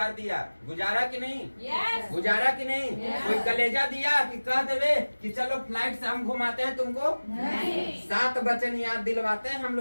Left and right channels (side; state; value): both; inverted; correlation -1.00